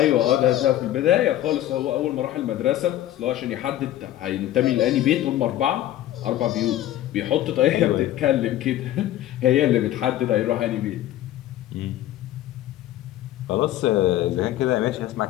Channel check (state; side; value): quieter; right; 13.5 dB